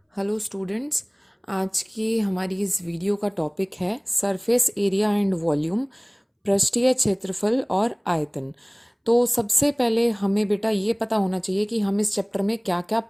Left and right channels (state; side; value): identical; both; correlation 1.00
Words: Hello students. आज की हमारी इस वीडियो का टॉपिक है सरफेस एरिया एंड वॉल्यूम, पृष्ठीय क्षेत्रफल और आयतन। तो सबसे पहले हमें बेटा ये पता होना चाहिए कि हम इस चैप्टर में क्या क्या